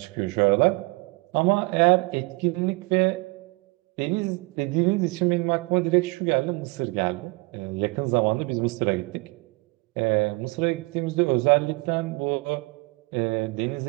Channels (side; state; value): left; quieter; 25.8 dB